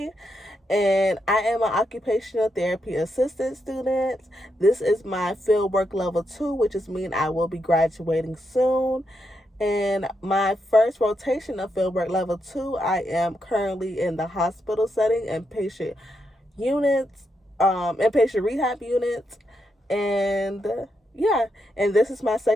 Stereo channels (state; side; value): normal; both; correlation 0.82